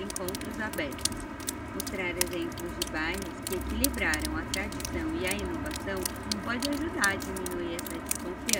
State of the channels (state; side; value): identical; both; correlation 1.00